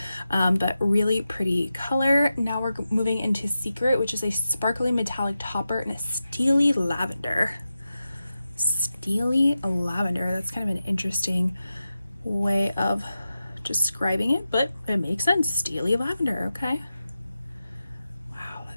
but really pretty color. Now we're moving into Secret, which is a sparkly metallic topper and a steely lavender. Steely lavender, that's kind of an interesting way of describing it, but it makes sense. Steely lavender, okay. Wow,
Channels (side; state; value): both; inverted; correlation -0.91